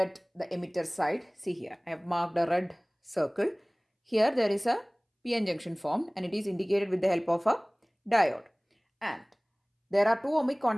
the emitter side. See here, I have marked a red circle. Here there is a PN junction formed and it is indicated with the help of a diode. And there are two ohmic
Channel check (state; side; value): identical; both; correlation 1.00